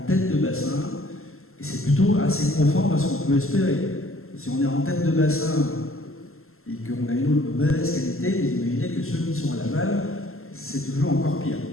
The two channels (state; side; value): late; right; 0.62 ms